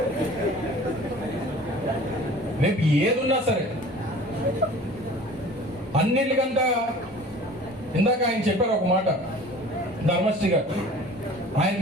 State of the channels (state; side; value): normal; both; correlation 0.45